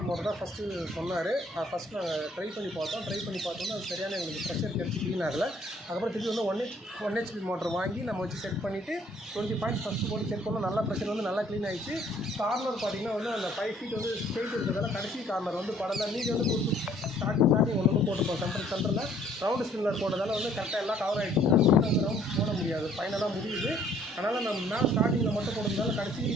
மோட்டர் தான் ஃபஸ்ட்டு சொன்னார். ஃபஸ்ட்டு நாங்கள் ட்ரை பண்ணி பார்த்தோம்னா அது சரியான எங்களுக்கு ப்ரெஷர் கிடச்சி க்ளீன் ஆகலை. அதுக்கப்புறம் திருப்பி வந்து 1 ஹெச்பி மோட்டர் வாங்கி நம்ம வச்சு செட் பண்ணிவிட்டு 20 பாயிண்ட்ஸ் ஃபஸ்ட்டு போட்டு செக் பண்ணோம். நல்லா ப்ரெஷர் வந்து நல்லா க்ளீன் ஆகிடுச்சு. கார்னர் பார்த்திங்கன்னா வந்து அந்த 5 ஃபீட் வந்து ஸ்ட்ரெயிட் இருக்கிறதால கடைசி கார்னர் வந்து படலாம். நீங்கள் வந்து ஸ்டார்டிங் ஒன்று போட்டுப்போம். சென்டரில் ரவுண்டு ஸ்பின்னர் போட்டதால் வந்து கரெக்டாக எல்லாம் கவர் ஆகிடுச்சு. அந்த ரவுண்ட் போட முடியாது, ஃபைனலாக முடியுது. அதனால் நம்ம மேலே ஸ்டார்டிங்கில் மட்டும் போடுறதுனால கடைசி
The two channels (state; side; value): normal; both; correlation 0.61